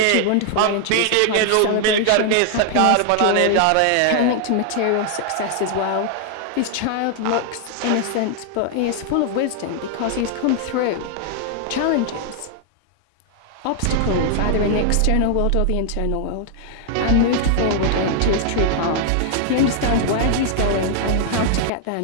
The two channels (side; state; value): both; different; correlation 0.00